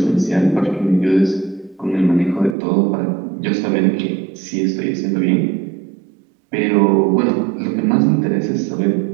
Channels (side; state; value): left; drops out; at 2.6 s